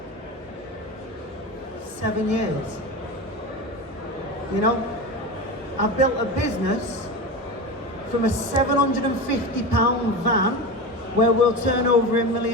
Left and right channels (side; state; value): both; normal; correlation 0.25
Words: 7 years. You know, I built a business from a £750 van where we'll turn over £1